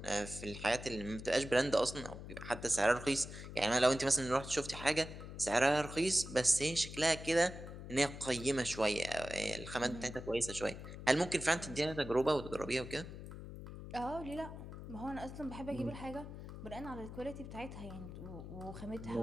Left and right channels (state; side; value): noise; left; hum, 11 dB below the sound